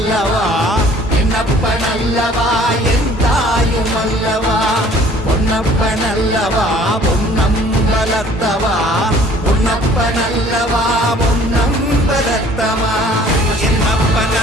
என்னப்பன் அல்லவா, என் தாயும் அல்லவா, பொன்னப்பன் அல்லவா, பொன்னம்பலத்தவா, பொன்னப்பன் அல்லவா, பொன்னம்பலத்தவா, என்னப்பன்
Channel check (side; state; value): both; normal; correlation 0.54